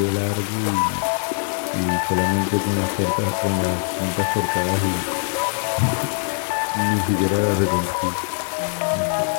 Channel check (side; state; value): right; silent; 55 dB below the other